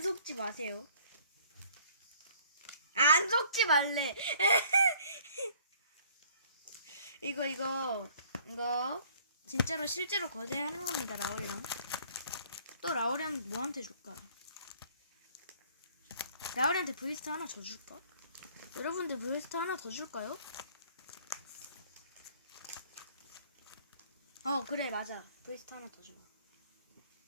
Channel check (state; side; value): inverted; both; correlation -0.57